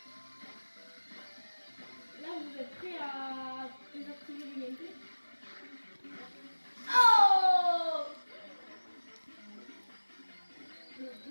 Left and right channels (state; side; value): inverted; both; correlation -1.00